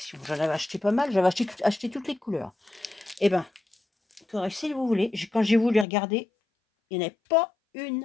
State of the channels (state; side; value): drops out; right; at 5.9 s